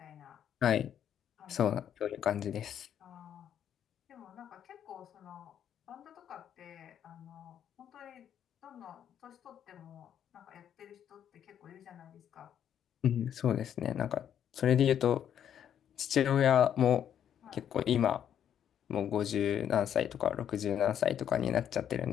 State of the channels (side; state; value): right; quieter; 9.5 dB